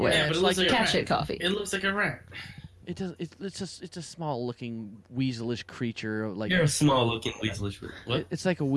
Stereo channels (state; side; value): identical; both; correlation 1.00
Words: way. Yeah, but It's it like looks like a cat rat. shit coffee. It looks like a rat. it does. It's a small looking weaselish creature. Like You're a small looking weaselish. What? it's like a